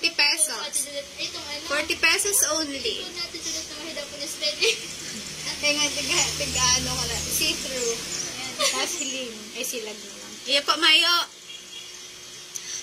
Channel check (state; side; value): identical; both; correlation 1.00